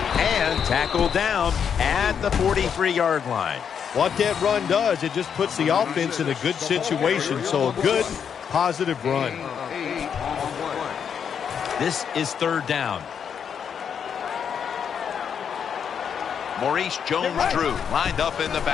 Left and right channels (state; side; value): quieter; right; 7.5 dB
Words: And tackled down at the 43-yard line. What that run does, it just puts the offense in a good situation. So a good, positive run. This is 3rd down. Maurice Jones-Drew lined up in the